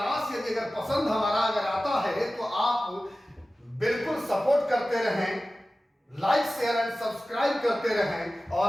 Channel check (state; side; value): normal; both; correlation 0.96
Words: यदि अगर पसंद हमारा अगर आता है तो आप बिल्कुल सपोर्ट करते रहें, लाइक शेयर एंड सब्सक्राइब करते रहें। और